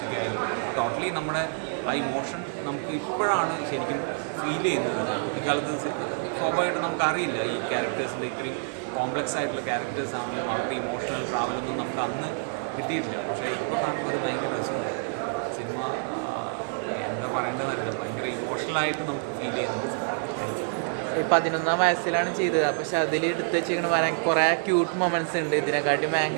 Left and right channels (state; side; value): silent; left; 57 dB below the other